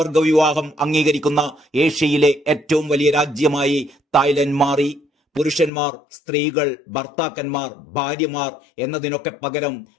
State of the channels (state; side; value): drops out; right; at 5.7 s